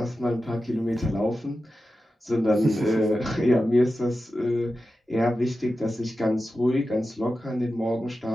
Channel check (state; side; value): normal; both; correlation 0.92